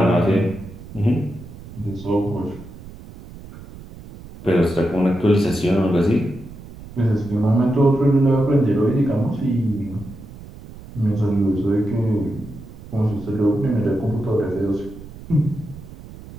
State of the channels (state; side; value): noise; right; rumble, 16 dB below the sound